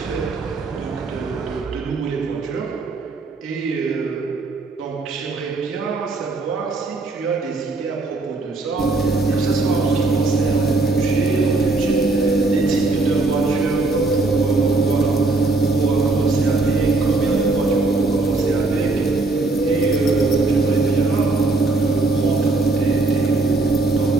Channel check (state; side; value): quieter; left; 3.3 dB